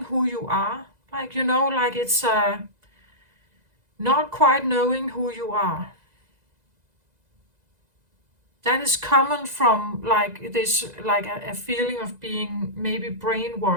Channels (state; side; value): late; left; 2.0 ms